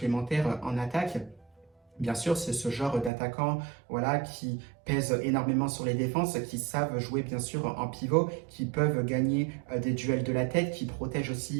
en attaque. Bien sûr, c'est ce genre d'attaquants voilà, qui pèsent énormément sur les défenses, qui savent jouer bien sûr en pivot, qui peuvent gagner des duels de la tête, qui protègent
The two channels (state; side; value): drops out; left; at 3.1 s